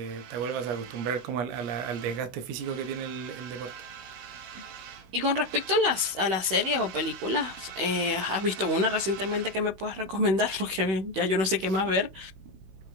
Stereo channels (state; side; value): late; left; 16 ms